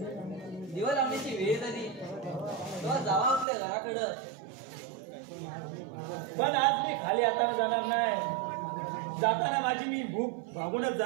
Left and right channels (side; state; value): left; drops out; at 3.5 s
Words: दिवा लावण्याची वेळ झाली तेव्हा जावा आपल्या घराकडं. पण आज मी खाली हाताने जाणार नाही. जाताना माझी मी भूक भागूनच